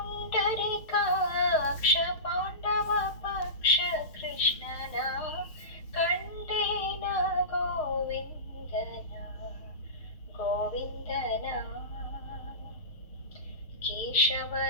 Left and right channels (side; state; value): right; late; 6.4 ms